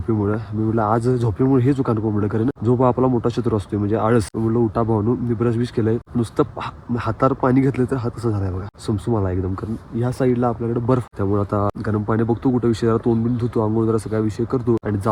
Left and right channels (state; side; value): identical; both; correlation 1.00